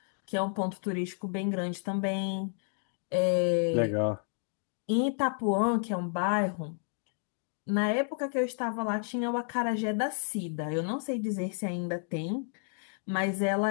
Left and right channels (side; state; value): right; silent; 57 dB below the other